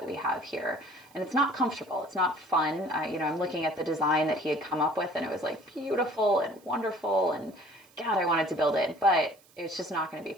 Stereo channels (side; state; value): right; noise; hiss, 29 dB below the sound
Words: we have here? And it's not comfortable. It's not fun. I'm looking at the design that he had come up with and it was like beautiful and wonderful and God, I wanted to build it, but it's just not going to be